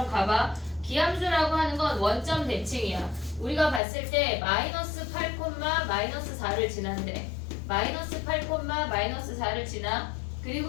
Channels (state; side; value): drops out; right; at 3.8 s